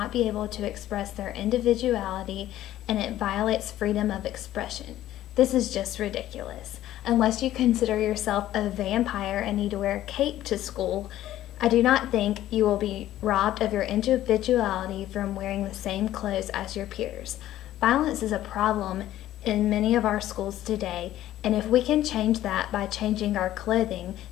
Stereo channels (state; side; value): quieter; right; 13.6 dB